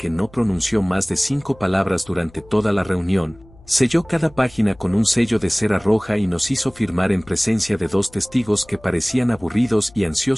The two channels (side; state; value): left; noise; hum, 25 dB below the sound